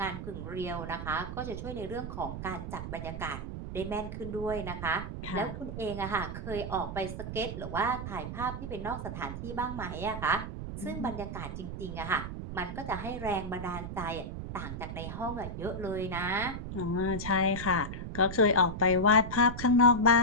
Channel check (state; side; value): noise; right; rumble, 7 dB below the sound